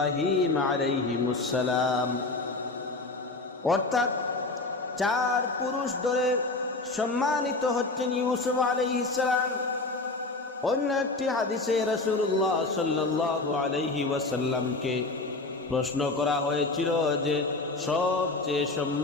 আলাইহিমুস সালাম। অর্থাৎ 4 পুরুষ ধরে সম্মানিত হচ্ছেন ইউসুফ আলাইহিস সালাম। অন্য একটি হাদিসে রাসূলুল্লাহ সাল্লাল্লাহু আলাইহি ওয়াসাল্লামকে প্রশ্ন করা হয়েছিল যে সবচেয়ে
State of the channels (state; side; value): quieter; right; 3.3 dB